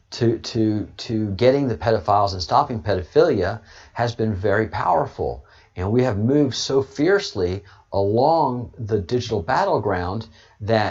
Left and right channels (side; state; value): both; identical; correlation 1.00